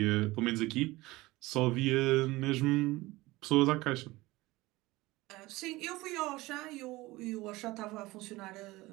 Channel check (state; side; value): quieter; left; 19.9 dB